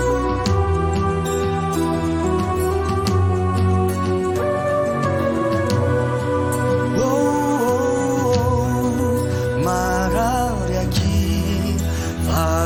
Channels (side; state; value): both; identical; correlation 1.00